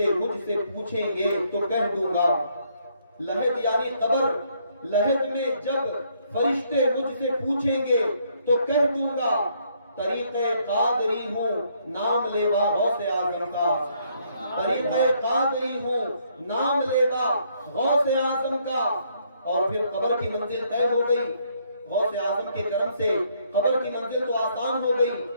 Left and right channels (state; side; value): inverted; both; correlation -0.69